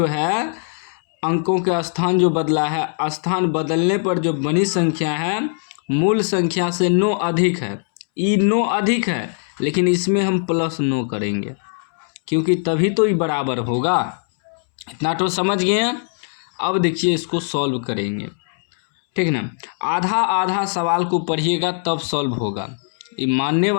है अंकों के स्थान जो बदला है, स्थान बदलने पर जो बनी संख्या है मूल संख्या से 9 अधिक है। ये 9 अधिक है लेकिन इसमें हम +9 करेंगे क्योंकि तभी तो ये बराबर होगा। इतना तो समझ गए हैं। अब देखिए इसको सॉल्व करेंगे, ठीक ना। आधा आधा सवाल को पढ़िएगा तब सॉल्व होगा। ये मानने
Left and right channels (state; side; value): silent; right; 66 dB below the other